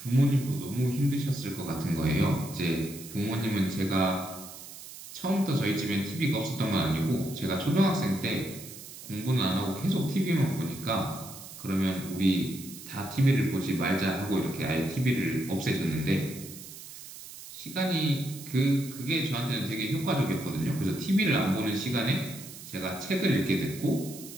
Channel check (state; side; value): noise; right; hiss, 14 dB below the sound